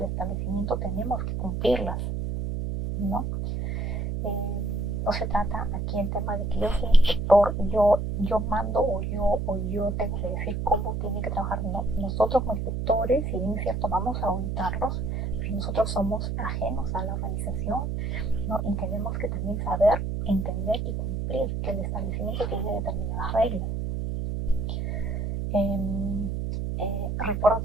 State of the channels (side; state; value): right; noise; hum, 1 dB below the sound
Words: establecimiento tenemos que cumplirlas, ¿no? No se trata aquí el tema de que yo soy inspector y yo mando o yo tengo que decir cómo tienen que trabajar. No, nosotros como inspectores, si bien es cierto, vamos a auditarlos, pero nosotros somos ajenos a la organización, ¿no? Y tenemos que también saber, entender y cumplir que el establecimiento tiene determinadas reglas. Recuerdo